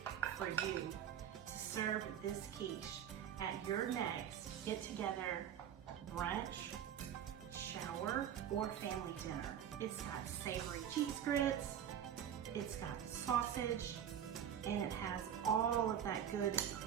for you to serve this quiche at your next get-together, brunch, shower, or family dinner. It's got savory cheese grits, it's got sausage, and it has all of that good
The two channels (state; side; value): quieter; left; 9.4 dB